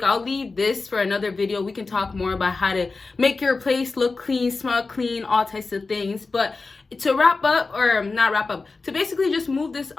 I'll leave this for another video. We can talk more about how to make your place look clean, smell clean, all types of things. But to wrap up, or not wrap up, to basically just move this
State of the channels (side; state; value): right; quieter; 3.9 dB